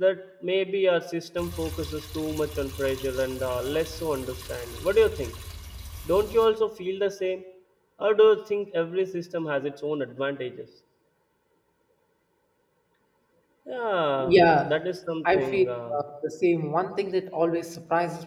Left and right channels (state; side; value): identical; both; correlation 1.00